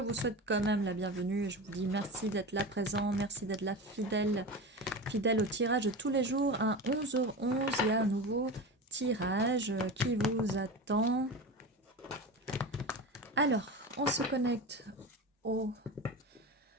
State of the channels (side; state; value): both; normal; correlation 0.27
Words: souhaite quand même la bienvenue. Je vous dis merci d'être là présent, merci d'être là fidèle au tirage de tous les jours. À 11h11, il y a un nouveau tirage qui vous attend. Alors, on se connecte aux